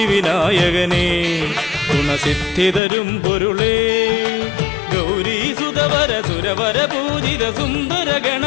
ഗുണസിദ്ധിതരും പൊരുളേ ഗൗരീസുതവര സുരവര പൂജിത സുന്ദര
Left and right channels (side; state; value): right; drops out; at 2.8 s